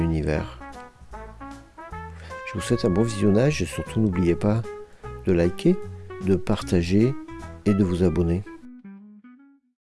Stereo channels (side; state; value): both; identical; correlation 1.00